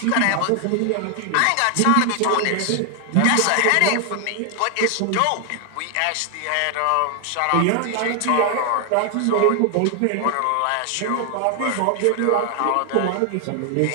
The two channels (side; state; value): both; different; correlation 0.00